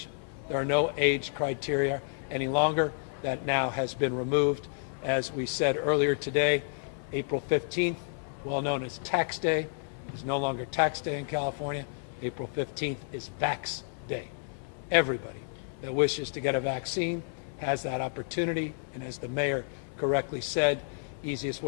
There are no age criteria any longer. That now has been removed. As we said earlier today, April 15th, well known as Tax Day, is no longer Tax Day in California. April 15th is Vax Day. Everybody that wishes to get a vaccine has that opportunity, and as the mayor correctly said, easiest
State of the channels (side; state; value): right; silent; 57 dB below the other